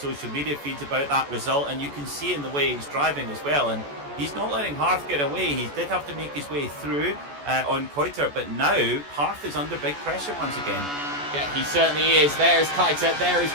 media feeds about that result, and you can see in the way he's driving as well. And he's not letting Harth get away. He did have to make his way through on Keitel, but now Harth is under big pressure once again. Yeah, he certainly is. There's Keitel, there is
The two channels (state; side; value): late; left; 14 ms